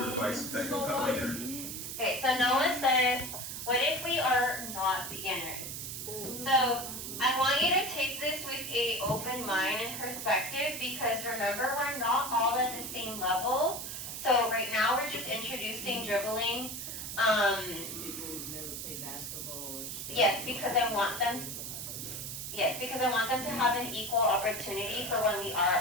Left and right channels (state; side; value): noise; right; hiss, 6 dB below the sound